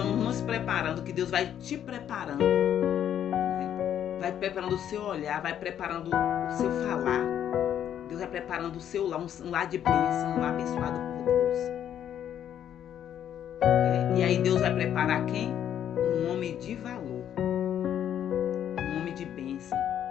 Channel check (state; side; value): quieter; right; 9.9 dB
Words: nos preparando, que Deus vai te preparando, né? Vai preparando o seu olhar, vai preparando o seu falar. Deus vai preparando o seu lar, um lar de bênção, um lar abençoado por Deus. E aí Deus vai preparar quem? Um homem de valor, um homem de bênção,